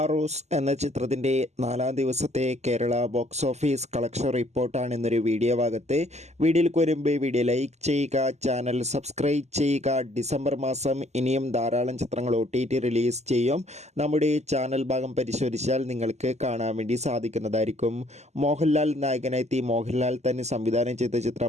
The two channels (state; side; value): late; left; 0.33 ms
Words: എന്ന ചിത്രത്തിൻ്റെ 4-ാം ദിവസത്തെ കേരള ബോക്സ് ഓഫീസ് കളക്ഷൻ റിപ്പോർട്ടാണ് ഇന്നൊരു വീഡിയോ ഭാഗത്ത്. വീഡിയോയിലേക്ക് വരുമ്പോൾ വീഡിയോ ലൈക്ക് ചെയ്യുക, ചാനൽ സബ്സ്ക്രൈബ് ചെയ്യുക. ഡിസംബർ മാസം ഇനിയും ധാരാളം ചിത്രങ്ങൾ OTT റിലീസ് ചെയ്യും. നമ്മുടെ ചാനൽ ഭാഗം പരിശോധിച്ചാൽ നിങ്ങൾക്ക് കാണാൻ വേണ്ടി സാധിക്കുന്നതായിരിക്കും. മോഹൻലാൽ നായകനെത്തി മോഹൻലാൽ തന്നെ സംവിധാനം ചെയ്ത